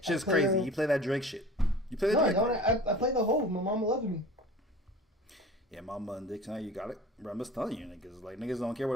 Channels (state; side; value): normal; both; correlation 0.41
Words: Shit's crazy. You play that Drake shit. You play that Drake. I play the whole. My mama loves me. Yeah, Mama and Dick tonight, you got it. Bro, I'm just telling you, niggas. Like, niggas don't care about